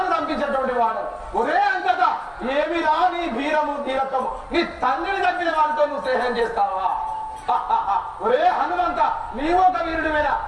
దంపించేటువంటి వాడు. ఒరే అంతటా ఏమిరా నీ వీరము వీరత్వము? నీ తండ్రిని తప్పిన వారితో నువ్వు స్నేహం చేస్తావా? ఒరే హనుమంత, నీవు ఒక వీరుడివేనా?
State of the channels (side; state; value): both; identical; correlation 1.00